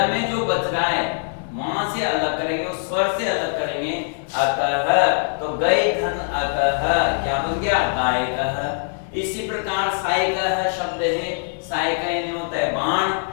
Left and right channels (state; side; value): silent; right; digital silence